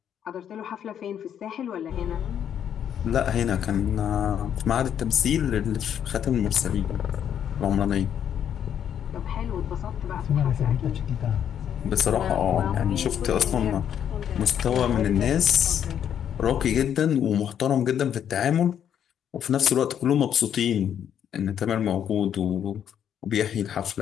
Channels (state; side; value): quieter; right; 9.2 dB